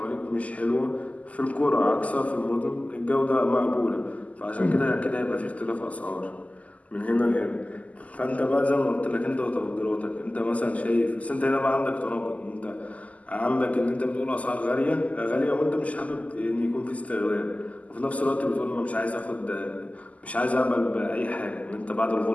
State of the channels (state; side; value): late; right; 0.071 ms